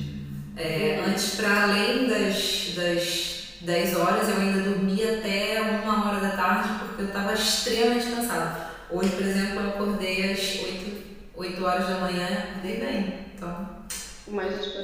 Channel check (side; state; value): both; identical; correlation 1.00